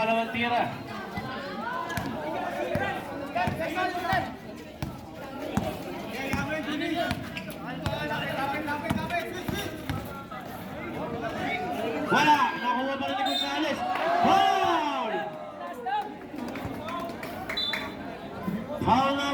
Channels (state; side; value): identical; both; correlation 1.00